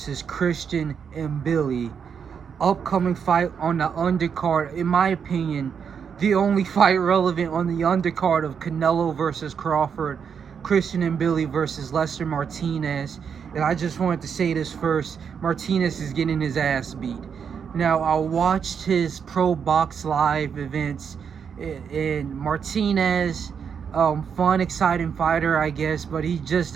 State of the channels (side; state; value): left; quieter; 7.0 dB